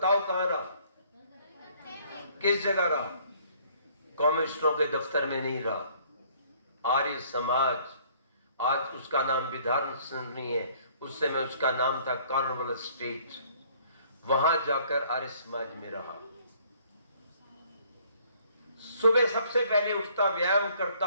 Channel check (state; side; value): inverted; both; correlation -0.60